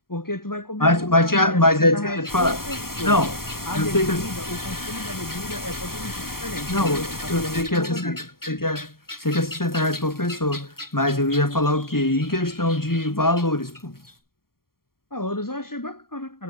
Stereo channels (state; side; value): late; right; 0.93 ms